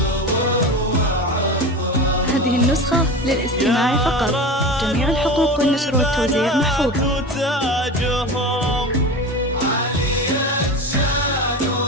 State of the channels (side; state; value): both; normal; correlation 0.28